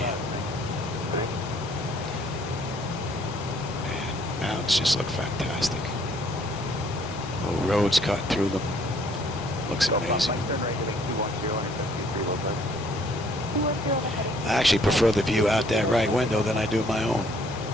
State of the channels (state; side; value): normal; both; correlation 0.62